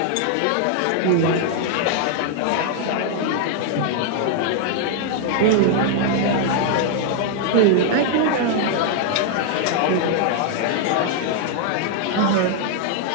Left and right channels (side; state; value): both; different; correlation 0.00